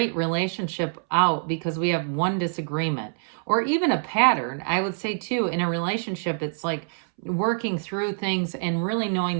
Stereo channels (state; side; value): silent; left; 61 dB below the other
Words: relationship out because we have one disagreement or even a pattern. I would say too, in a relationship, it's like working through things and really knowing